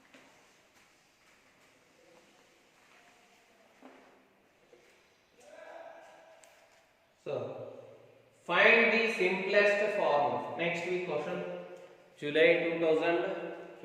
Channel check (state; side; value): identical; both; correlation 1.00